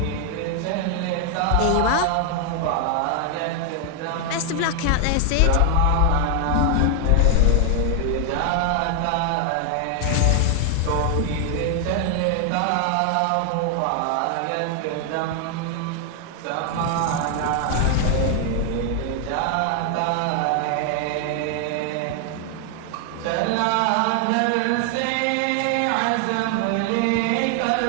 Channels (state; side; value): different; both; correlation 0.00